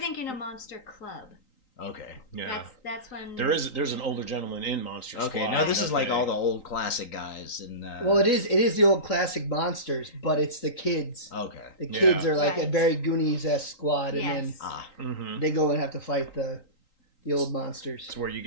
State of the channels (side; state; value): right; late; 3.9 ms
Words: of Monster Club. Okay. Yeah, That's when there's an older gentleman in Monster Squad. Okay, no, this is that like they- all the old classic guys. And Well, it is the old classic monsters, but it's the kids. Okay. The kids Yeah. are like a Right. very Goonies-esque squad, and then Yes. Mhm. they go and have to fight the old monsters. It's where you